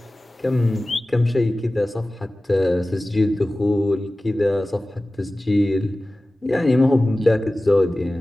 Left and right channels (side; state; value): both; normal; correlation 0.97